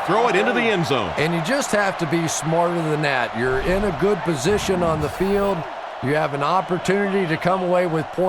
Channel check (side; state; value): both; identical; correlation 1.00